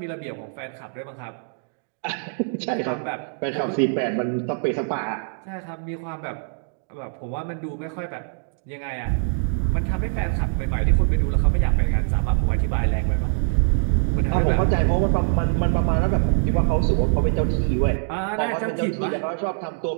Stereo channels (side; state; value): left; silent; digital silence